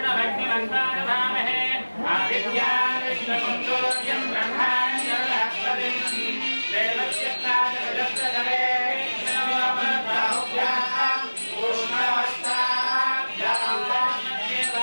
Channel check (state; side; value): inverted; both; correlation -1.00